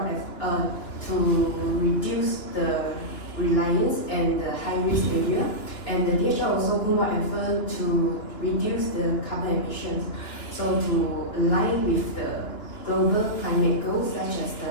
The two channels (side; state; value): right; late; 2.9 ms